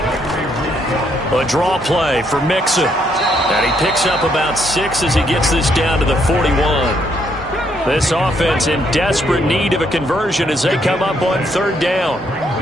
A draw play for Mixon. And he picks up about 6 as he gets this down to the 41. This offense in desperate need of a conversion as they come up on 3rd down.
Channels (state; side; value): normal; both; correlation 0.72